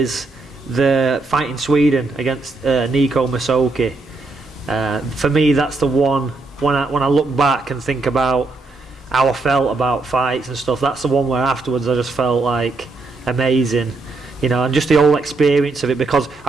the fight in Sweden against Nico Masoki. For me, that's the one when I look back and think about how I felt about fights and stuff. That's the one where afterwards I just felt like amazing, you know, and just the whole experience of it, because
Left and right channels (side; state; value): left; quieter; 3.6 dB